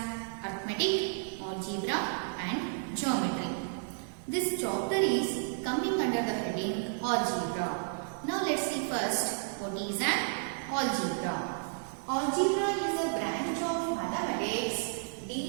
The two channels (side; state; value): left; silent; 56 dB below the other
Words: arithmetic, algebra and geometry. This chapter is coming under the heading algebra. Now let's see first what is an algebra. Algebra is a branch of mathematics